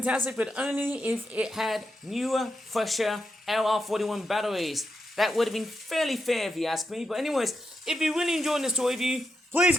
but only if it had newer, fresher LR41 batteries. That would have been fairly fair if you ask me. But anyways, if you really enjoyed this toy review, please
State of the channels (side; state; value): both; normal; correlation 0.84